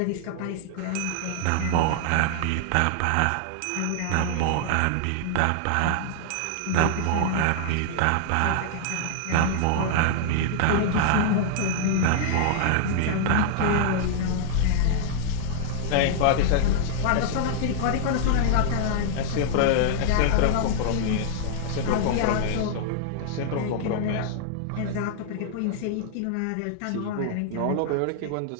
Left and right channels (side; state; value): both; different; correlation -0.01